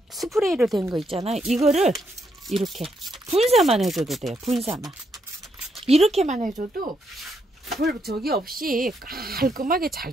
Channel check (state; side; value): normal; both; correlation 0.77